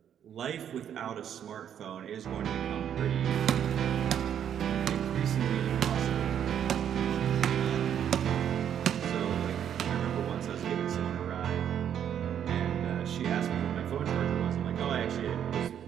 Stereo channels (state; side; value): quieter; left; 9.3 dB